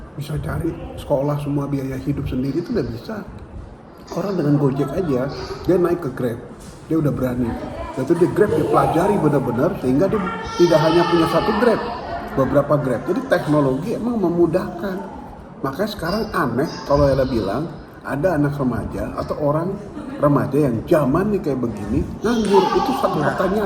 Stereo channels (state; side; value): identical; both; correlation 1.00